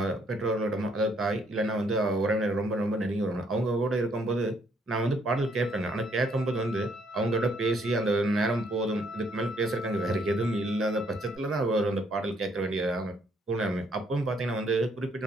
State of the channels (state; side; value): normal; both; correlation 0.69